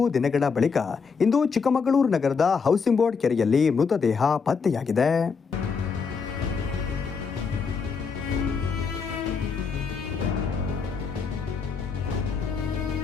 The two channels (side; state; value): right; quieter; 5.4 dB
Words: ದಿನಗಳ ಬಳಿಕ ಇಂದು ಚಿಕ್ಕಮಗಳೂರು ನಗರದ ಹೌಸಿಂಗ್ ಬೋರ್ಡ್ ಕೆರೆಯಲ್ಲಿ ಮೃತದೇಹ ಪತ್ತೆಯಾಗಿದೆ.